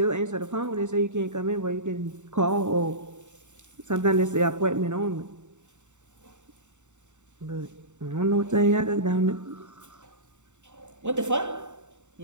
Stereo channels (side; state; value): left; late; 0.84 ms